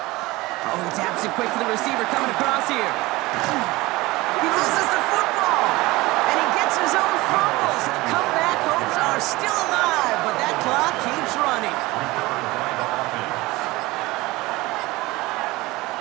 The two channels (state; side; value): quieter; left; 20.6 dB